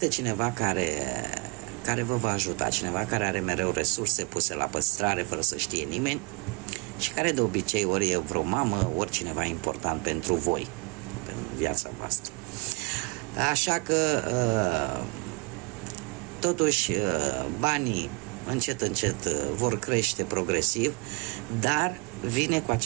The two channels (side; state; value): left; quieter; 28.9 dB